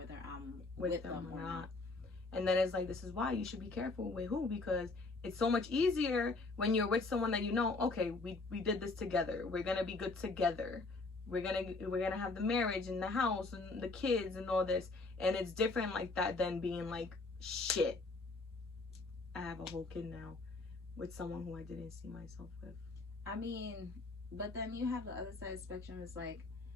I'm with them or not. And then it's like, this is why you should be careful with who, because it's so much easier when you're with someone that you know, okay, we did this together, we're gonna be good together, we're gonna have the marriage and the house and the kids and all this. And it's different like that than being like, shit, I have a whole kid now with someone who I didn't see myself with. I mean, but then you have the other side of the spectrum. It's like,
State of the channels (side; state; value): right; quieter; 3.6 dB